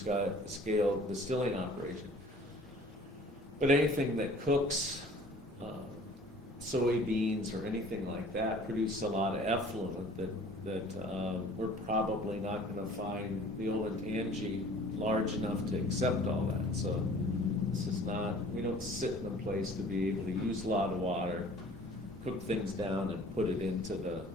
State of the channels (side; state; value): both; normal; correlation 0.50